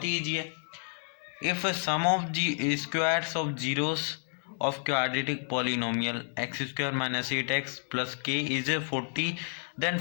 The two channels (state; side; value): silent; right; 57 dB below the other